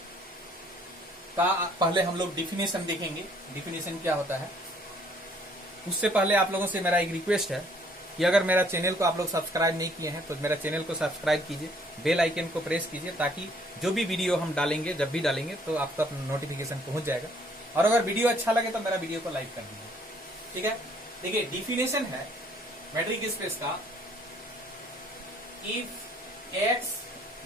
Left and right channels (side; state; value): both; normal; correlation 0.62